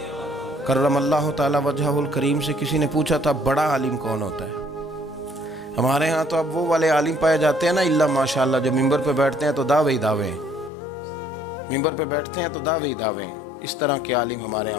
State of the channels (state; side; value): drops out; right; at 10.7 s